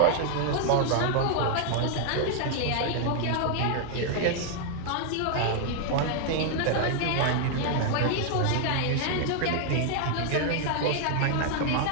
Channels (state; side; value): different; both; correlation 0.00